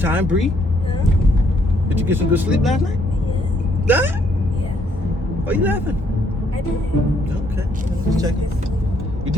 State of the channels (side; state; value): both; normal; correlation 0.69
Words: Bree. Yeah. Did you get some good sleep last night? Yeah. Huh? Yeah. Why are you laughing? I did. Okay, just checking. You